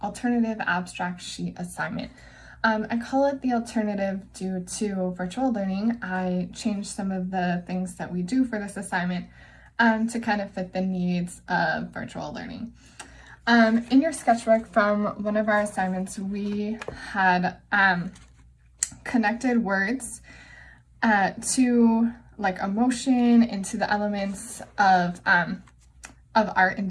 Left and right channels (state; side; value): identical; both; correlation 1.00